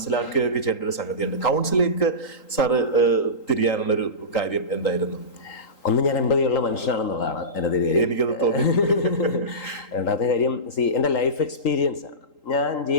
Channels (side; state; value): right; late; 3.8 ms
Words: ചെയ്യേണ്ട ഒരു സംഗതിയുണ്ട്. കൗൺസിലിംഗ് സാറ് തിരിയാനുള്ളൊരു കാര്യം എന്തായിരുന്നു? ഒന്ന്, ഞാൻ എമ്പതിയുള്ള മനുഷ്യനാണെന്നുള്ളതാണ് എൻ്റെ കാര്യം, എനിക്കത് തോന്നി. രണ്ടാമത്തെ കാര്യം, എൻ്റെ ലൈഫ് എക്സ്പീരിയൻസ് ആണ്. ഞാൻ